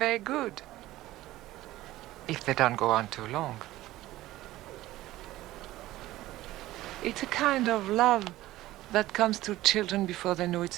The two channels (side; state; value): left; quieter; 16.2 dB